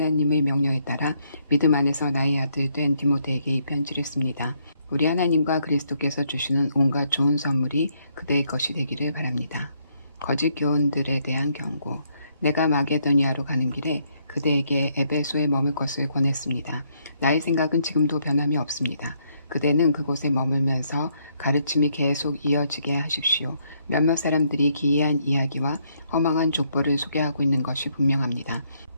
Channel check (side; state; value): both; inverted; correlation -0.72